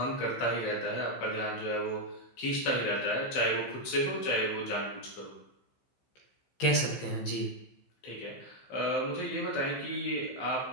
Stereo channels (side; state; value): right; late; 15 ms